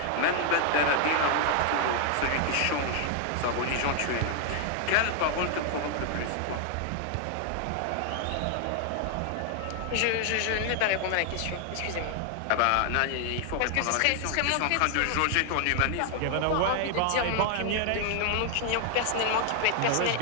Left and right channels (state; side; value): different; both; correlation 0.00